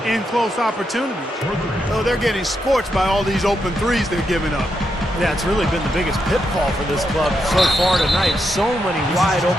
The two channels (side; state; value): both; normal; correlation 0.83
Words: in-close opportunities. Oh, they're getting scorched by all these open threes they're giving up. Yeah, it's really been the biggest pitfall for this club so far tonight. So many wide